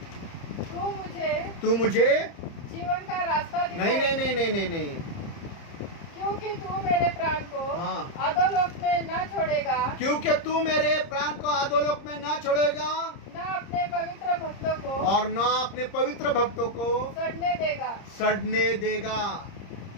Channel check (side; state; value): right; late; 30 ms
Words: तू मुझे जीवन का रास्ता नहीं नहीं नहीं नहीं नहीं नहीं, क्योंकि तू मेरे प्राण को हाँ। अधोलोक में न छोड़ेगा, क्योंकि तू मेरे प्राण को अधोलोक में ना छोड़ेगा, न अपने पवित्र भक्तों को और न अपने पवित्र भक्तों को सड़ने देगा।